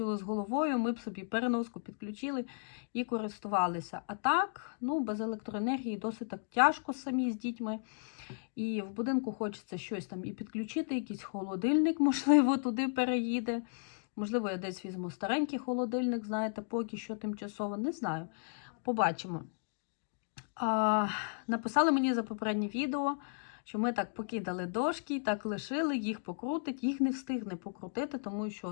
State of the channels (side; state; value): right; silent; digital silence